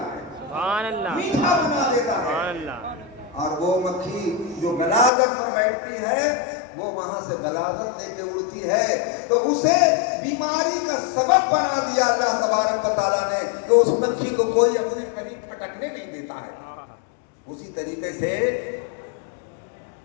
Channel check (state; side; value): drops out; right; at 5.1 s